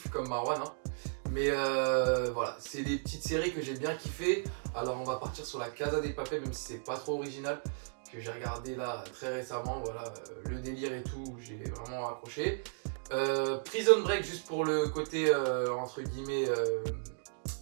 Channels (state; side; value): silent; left; digital silence